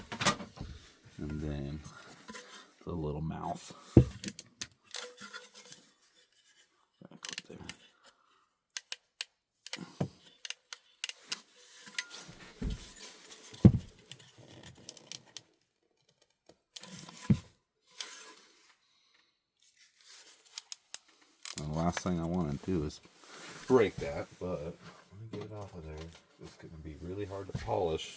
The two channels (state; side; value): identical; both; correlation 1.00